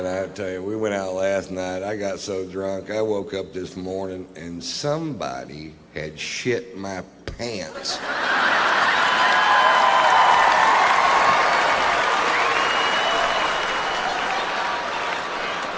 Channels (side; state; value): both; identical; correlation 1.00